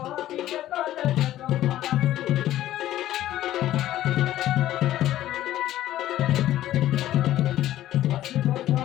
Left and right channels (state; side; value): quieter; right; 13.6 dB